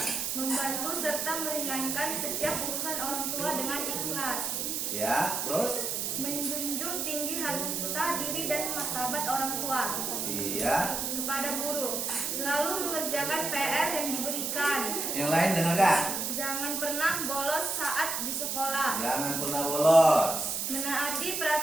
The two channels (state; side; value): noise; right; hiss, 1 dB below the sound